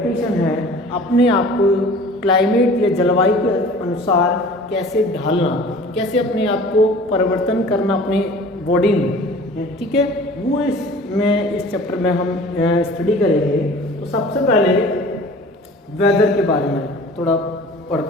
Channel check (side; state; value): both; normal; correlation 0.45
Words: है अपने आप को क्लाइमेट या जलवायु के अनुसार कैसे ढालना, कैसे अपने आप को परिवर्तन करना अपने बॉडी में, ठीक है, वो इस चैप्टर में हम स्टडी करेंगे। तो सबसे पहले वेदर के बारे में थोड़ा